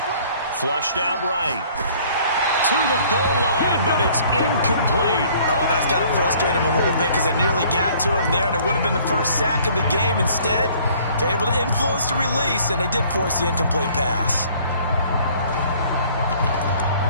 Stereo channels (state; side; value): inverted; both; correlation -0.56